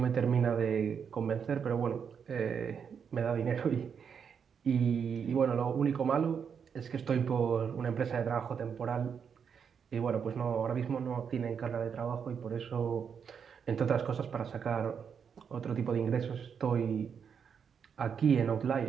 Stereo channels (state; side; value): quieter; left; 7.0 dB